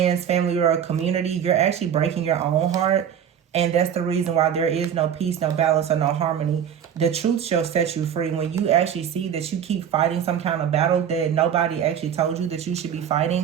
family, or a community. You're actually breaking your own heart. And that's the reason why there is no peace, no balance, or no harmony. The truth shall set you free. When you actually see that you keep fighting some kind of battle that nobody actually told you that you should be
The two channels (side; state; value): left; quieter; 8.7 dB